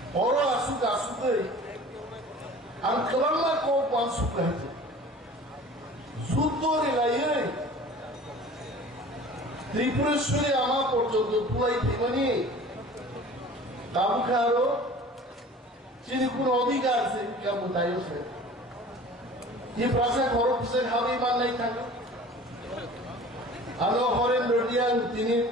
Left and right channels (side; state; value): both; normal; correlation 0.44